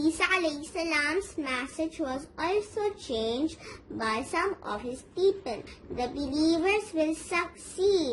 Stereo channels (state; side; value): identical; both; correlation 1.00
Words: alayhi salam's message was also changed by some of his people. The believers will